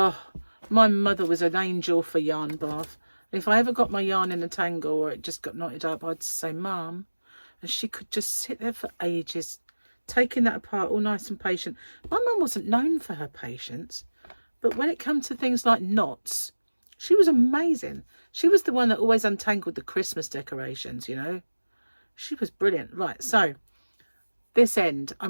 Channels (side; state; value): both; inverted; correlation -1.00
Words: my mother was an angel for yarn bath. If I ever got my yarn in a tangle or it just got knotted up, I'd say, Mum, and she could just sit there for ages, taking that apart, all nice and patient. My mum wasn't known for her patience, but when it comes to things like knots, she was amazing. She was the one that always untangled the Christmas decorations, you know. She was brilliant. Right, so this end,